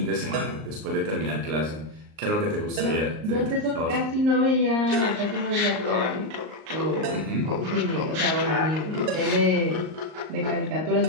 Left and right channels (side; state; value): left; late; 38 ms